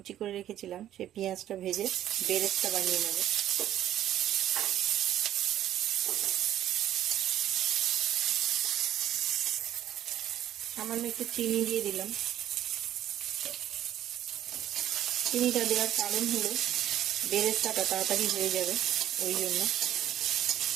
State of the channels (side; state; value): left; quieter; 12.1 dB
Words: করে রেখেছিলাম, সেই পেঁয়াজটা ভেজে বেরেস্তা বানিয়ে নেব। সামান্য একটু চিনি দিয়ে দিলাম। চিনিটা দেওয়ার কারণ হলো বেরেস্তাটা তাড়াতাড়ি হয়ে যাবে, ওই জন্য।